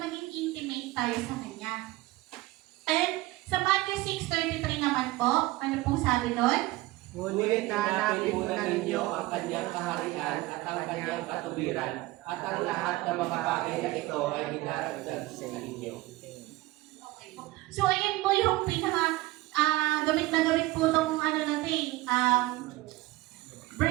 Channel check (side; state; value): left; quieter; 19.1 dB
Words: intimate tayo sa Kanya. And sa Matthew 6:33 naman po, ano pong sabi doon? Ngunit hanapin muna ninyo ang Kanyang kaharian at ang Kanyang katuwiran, at ang lahat ng mga bagay na ito ay hinaragdag sa inyo. So, ayan po yung gamit na gamit po itong